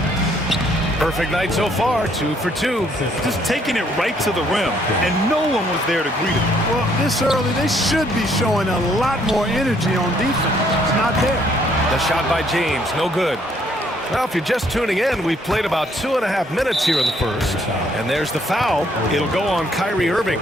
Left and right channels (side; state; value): both; normal; correlation 0.67